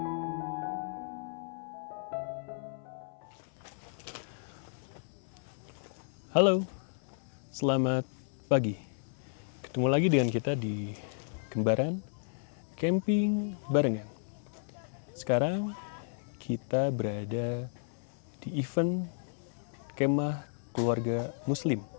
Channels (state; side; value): silent; right; 55 dB below the other